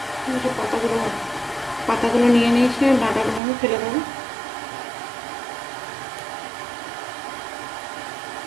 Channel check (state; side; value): drops out; left; at 3.4 s